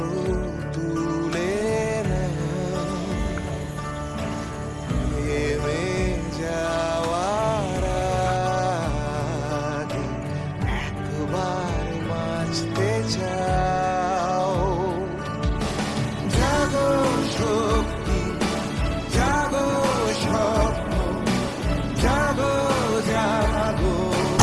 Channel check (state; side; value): identical; both; correlation 1.00